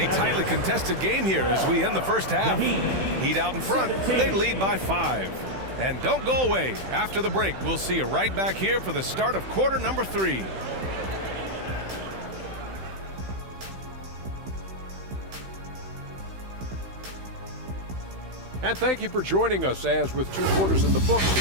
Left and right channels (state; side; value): late; left; 16 ms